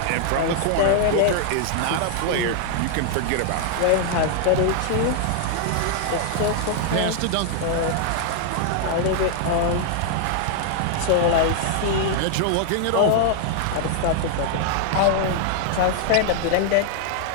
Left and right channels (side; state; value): both; different; correlation -0.01